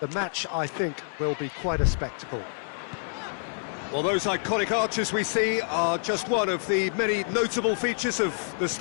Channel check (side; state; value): right; silent; digital silence